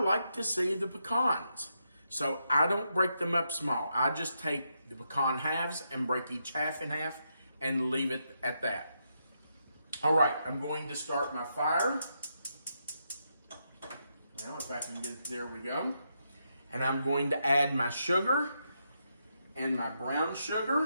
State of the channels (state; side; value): inverted; both; correlation -0.82